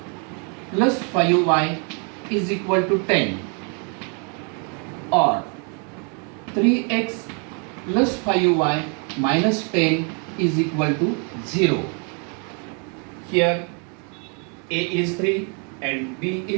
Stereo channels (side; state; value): left; quieter; 37.3 dB